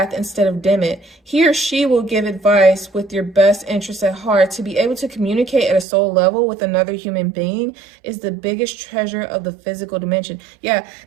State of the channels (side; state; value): left; drops out; at 5.9 s